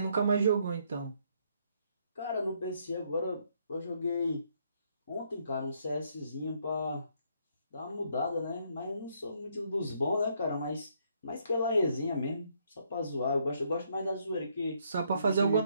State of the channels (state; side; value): inverted; both; correlation -0.71